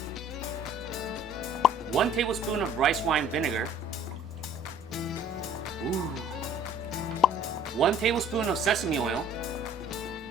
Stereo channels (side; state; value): both; normal; correlation 0.52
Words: 1 tablespoon of rice wine vinegar, ooh, 1 tablespoon of sesame oil,